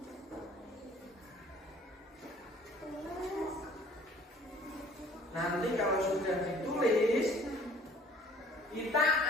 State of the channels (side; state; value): both; normal; correlation 0.54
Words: Nanti kalau sudah ditulis, kita